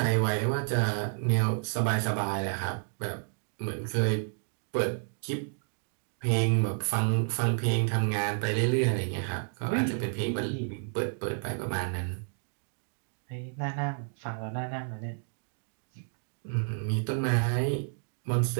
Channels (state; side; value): silent; left; 57 dB below the other